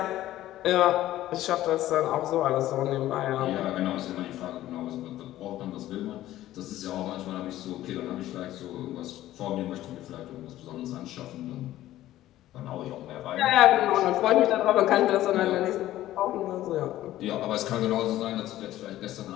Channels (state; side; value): quieter; right; 14.3 dB